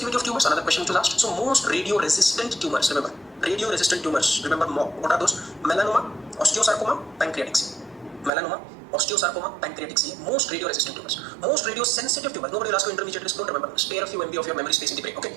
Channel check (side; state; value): left; drops out; at 8.3 s